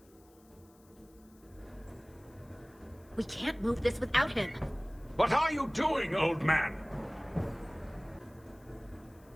We can't move this without him. What are you doing, old man?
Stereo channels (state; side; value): noise; left; hiss, 30 dB below the sound